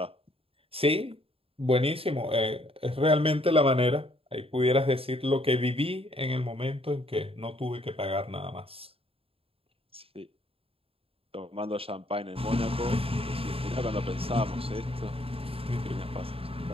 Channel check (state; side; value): late; left; 0.27 ms